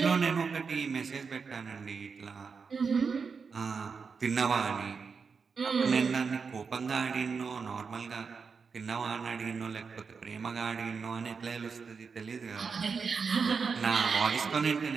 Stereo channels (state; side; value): quieter; left; 5.4 dB